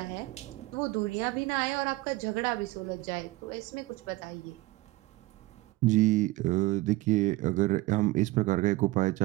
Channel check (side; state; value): left; quieter; 19.8 dB